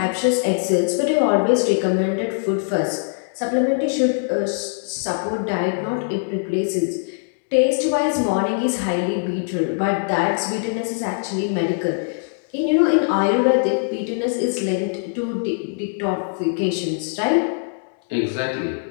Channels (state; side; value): silent; right; digital silence